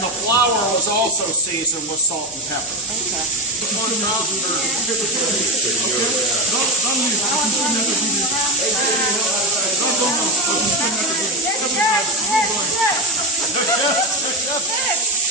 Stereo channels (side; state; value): both; normal; correlation 0.16